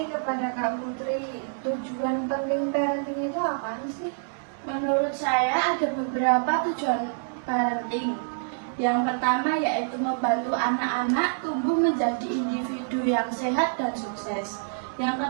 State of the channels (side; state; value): left; silent; 60 dB below the other